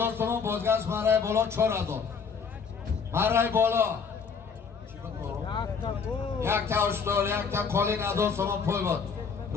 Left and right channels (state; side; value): quieter; right; 5.8 dB